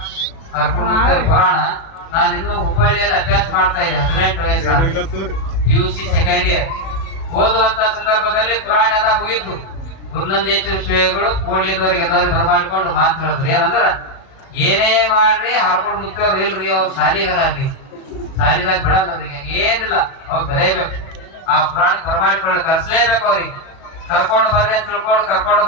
ಹರ್ಕೊಂಡು ಮುಕ್ತ ಪುರಾಣ. ನಾನು ಇನ್ನೂ ಹುಬ್ಬಳ್ಳಿಯಲ್ಲಿ ಅಭ್ಯಾಸ ಮಾಡ್ತಾ ಇದ್ದೆ, 18 ವಯಸ್ಸು, PUC ಸೆಕೆಂಡ್ ಇಯರ್ ಓದುವಂತ ಸಂದರ್ಭದಲ್ಲಿ ಪುರಾಣ ಎಲ್ಲ ಮುಗಿತು. ಗುರುನಂದೀಶ್ವರ ಶಿವೆಗಳು ಕೂಡ್ಲಿದ್ದವ್ರಿಗೆ ಎಲ್ಲರೂ ಬರಮಾಡ್ಕೊಂಡು ಮಾತು ಹೇಳಿದ್ರು, ಏನಂದ್ರ ಏನೇ ಮಾಡ್ರಿ ಹರ್ಕೊಂಡು ಮುಕ್ತವ್ರು ಇಲ್ರಿ, ಅವ್ರು ಸಾಲಿಗರ ಅಲ್ಲಿ ಸಾಲಿದಾಗ ಬಿಡಲ್ಲ, ಅವ್ರಿಗೆ ಏನಿಲ್ಲ, ಅವ್ರು ಬರೇಬೇಕು, ಆ ಪುರಾಣಕ್ಕೆ ಬರಮಾಡಿಕೊಂಡು ಕರ್ಸ್ಲೇಬೇಕು. ಅವ್ರಿಗೆ ಕರ್ಕೊಂಡು ಬರ್ರಿ ಅಂತ ತಿಳ್ಕೊಂಡು ಕರ್ಕೊಂಡು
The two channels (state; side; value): late; right; 37 ms